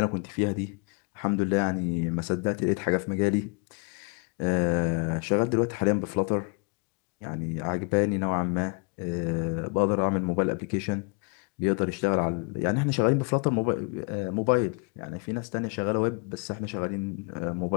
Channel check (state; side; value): quieter; right; 33.3 dB